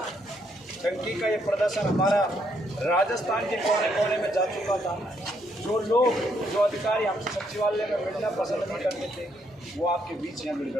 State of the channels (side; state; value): both; normal; correlation 0.73